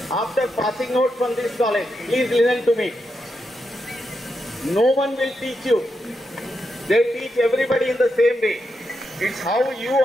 after passing out from this college. Please listen to me. No one will teach you. They teach everybody in the same way. It's how you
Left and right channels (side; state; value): both; normal; correlation 0.85